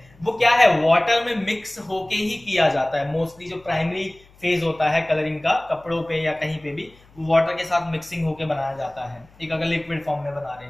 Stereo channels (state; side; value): noise; left; hum, 28 dB below the sound